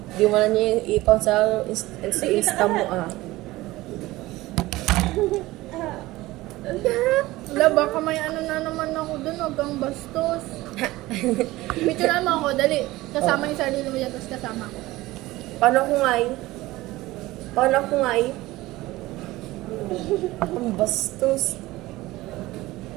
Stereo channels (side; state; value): left; quieter; 18.5 dB